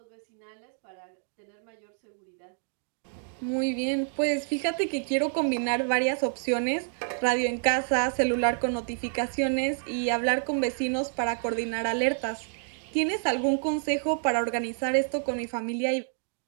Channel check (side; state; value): left; silent; digital silence